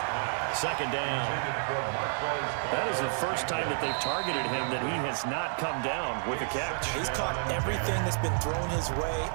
second down. That is the first time that they've targeted him that he has not come down with a catch. He's caught everything that's been thrown his way.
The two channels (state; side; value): silent; left; digital silence